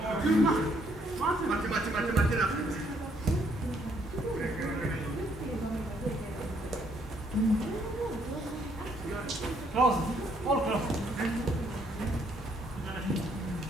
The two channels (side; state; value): both; normal; correlation 0.68